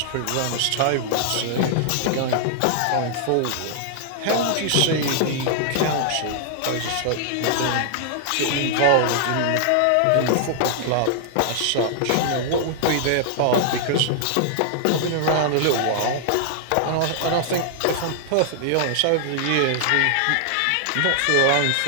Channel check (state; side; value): different; both; correlation -0.01